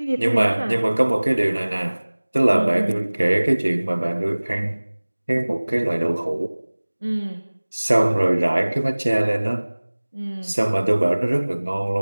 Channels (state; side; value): inverted; both; correlation -1.00